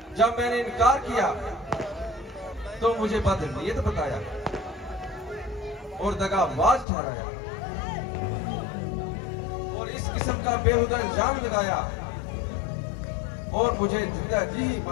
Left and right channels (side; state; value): right; drops out; at 6.9 s